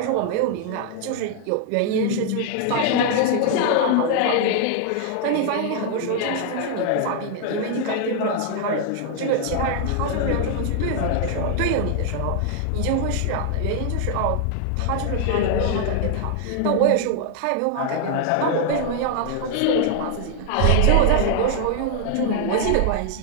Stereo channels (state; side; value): different; both; correlation 0.00